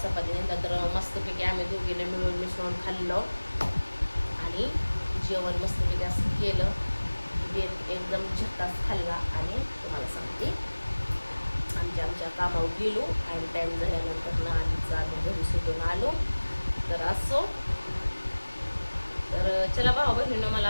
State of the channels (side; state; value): both; inverted; correlation -1.00